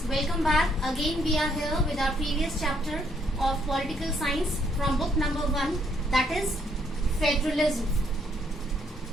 welcome back. Again we are here with our previous chapter of political science from book number 1, that is federalism.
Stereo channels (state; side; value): normal; both; correlation 0.70